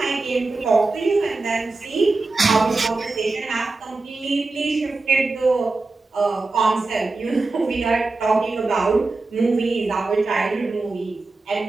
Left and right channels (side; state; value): left; quieter; 3.5 dB